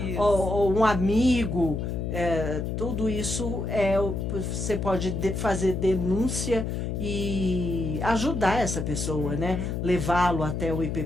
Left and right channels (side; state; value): left; noise; hum, 3 dB below the sound